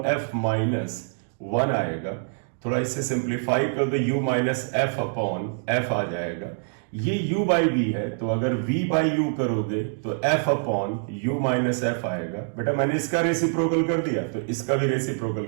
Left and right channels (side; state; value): left; silent; digital silence